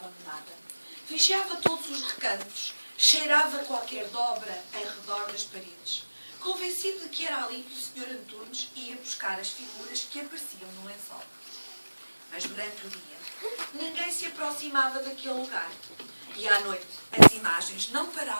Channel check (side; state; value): both; inverted; correlation -1.00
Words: Vigiava todos os recantos, cheirava qualquer dobra em redor das paredes, convencido de que era ali que o Sr. Antunes ia buscar as figuras que apareciam no lençol. Mas durante o dia, ninguém se aproximava daquele lugar. E à noite, as imagens não